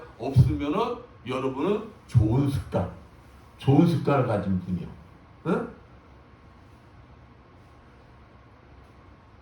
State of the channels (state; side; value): identical; both; correlation 1.00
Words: 없으면은 여러분은 좋은 습관을 가진 분이요. 응?